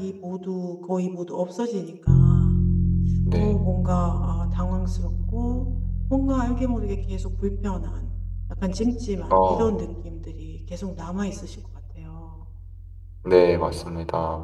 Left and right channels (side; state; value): both; identical; correlation 1.00